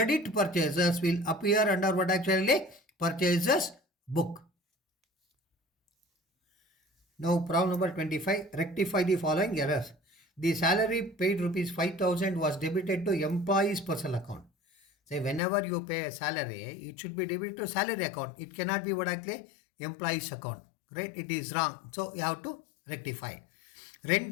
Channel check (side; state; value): right; drops out; at 15.4 s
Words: purchases will appear under what actually purchases book. Now problem number 25. Rectify the following errors. The salary paid rupees 5,000 was debited to employee's personal account. Say whenever you pay a salary, it should be debited to salary account. It cannot be what actually employee's account. Right? It is wrong. So you have to rectify.